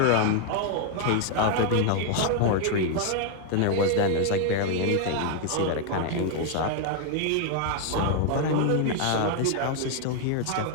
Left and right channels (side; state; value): both; different; correlation 0.01